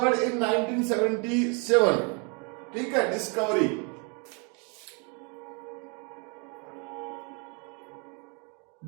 इन 1977। ठीक है, डिस्कवरी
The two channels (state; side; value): quieter; left; 34.7 dB